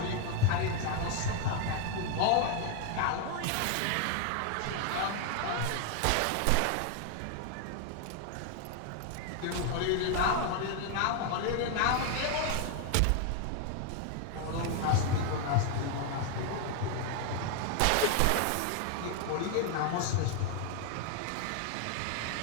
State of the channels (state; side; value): different; both; correlation 0.01